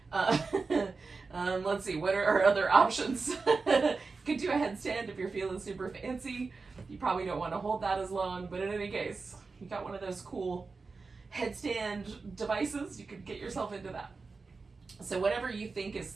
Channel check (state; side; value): quieter; left; 4.3 dB